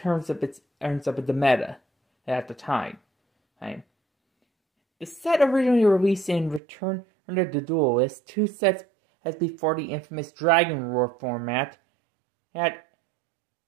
of the meta at the time. The set originally released in Return of the Duelist, 2 sets as before the infamous Dragon Roar format, had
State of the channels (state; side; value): drops out; left; at 6.6 s